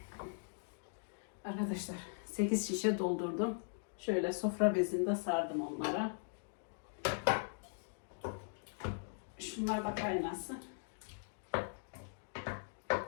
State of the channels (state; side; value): silent; right; digital silence